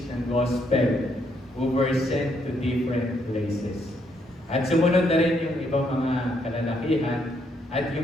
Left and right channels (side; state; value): both; normal; correlation 0.73